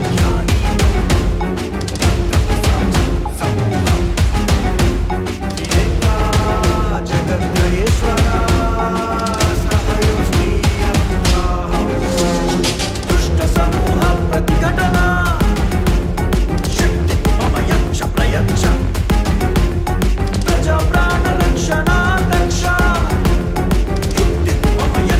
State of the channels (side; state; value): both; identical; correlation 1.00